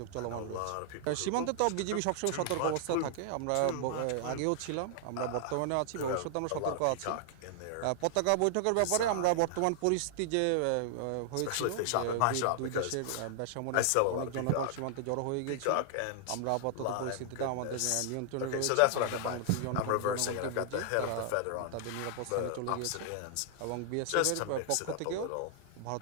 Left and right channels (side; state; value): both; different; correlation 0.00